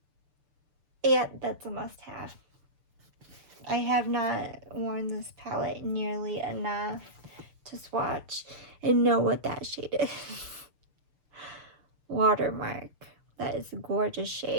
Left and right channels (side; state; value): left; late; 6.8 ms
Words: Yeah, that's a must-have. I have not worn this palette nearly enough to swatch and know what that shade is. Watermark. That is a gorgeous